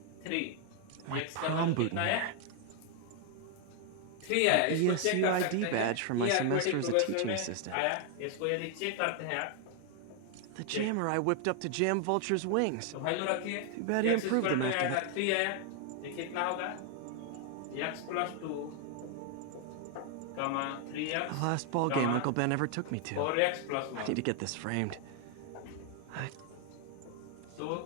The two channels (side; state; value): both; different; correlation 0.00